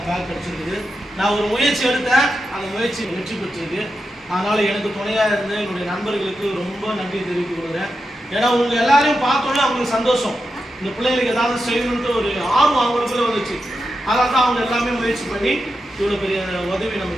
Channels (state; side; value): normal; both; correlation 0.88